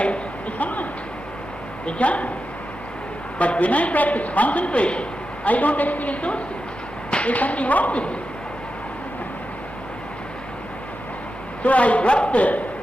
the samadhi, the jhana. But when I practice concentration, I don't experience those things. There's something wrong with it. So I dropped the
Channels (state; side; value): normal; both; correlation 0.90